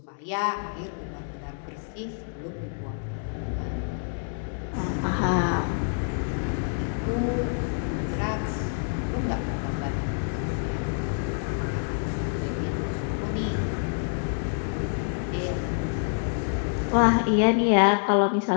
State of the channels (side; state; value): right; silent; digital silence